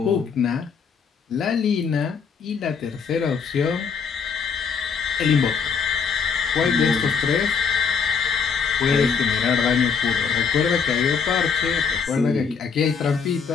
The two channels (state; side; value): quieter; right; 6.1 dB